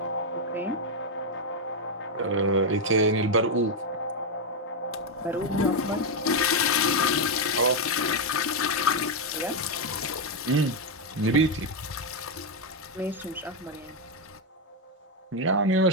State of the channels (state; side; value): normal; both; correlation 0.02